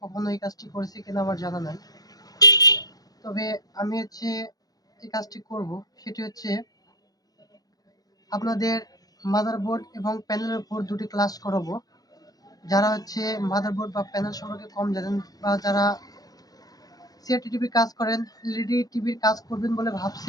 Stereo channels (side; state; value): right; late; 0.18 ms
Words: কখনো এই কাজটি করেছে কিনা আমার জানা নাই। তবে আমি এই কাজটি করব। সেটি হচ্ছে আপনাদের মাদারবোর্ড এবং প্যানেলের উপর দুটি ক্লাস করাবো। যারা মাদারবোর্ড বা প্যানেল সম্পর্কে কম জানেন বা যারা সিআরটি টিভির কাজ করেন, এলইডি টিভির কাজ করবেন বলে